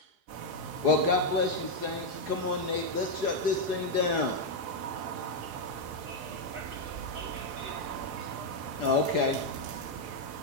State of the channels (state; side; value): late; left; 4.8 ms